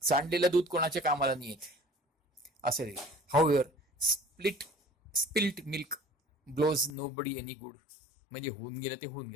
सांडलेलं दूध कोणाच्या कामाला नाही येत असं रे. However spilt milk blows nobody any good म्हणजे होऊन गेलं ते होऊन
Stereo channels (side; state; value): right; drops out; at 7.0 s